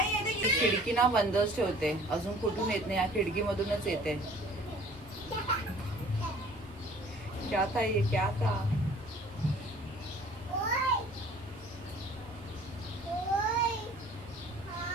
ये देख. खिडकी ना बंदच ठेवते, अजून कुठून येत नाही, या खिडकीमधूनच येते. क्या था ये, क्या था?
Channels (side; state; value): both; normal; correlation 0.51